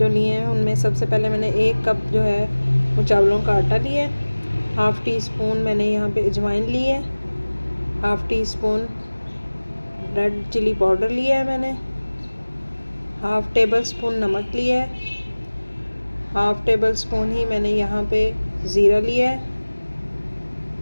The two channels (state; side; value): inverted; both; correlation -1.00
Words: लिए हैं उनमें सबसे पहले मैंने 1 कप जो है वो चावलों का आटा लिया है। हाफ़ टी स्पून मैंने यहाँ पे अजवाइन ली है। Half teaspoon red chilli powder लिया है मैंने। हाफ़ टेबल स्पून नमक लिया है। हाफ़ टेबल स्पून ही मैंने यहाँ पे ज़ीरा लिया है